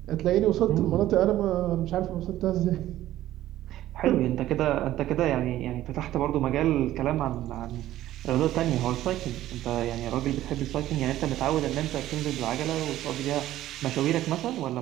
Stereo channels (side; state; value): left; quieter; 14.0 dB